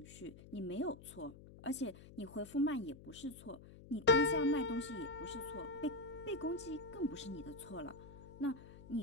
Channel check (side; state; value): left; noise; hum, 18 dB below the sound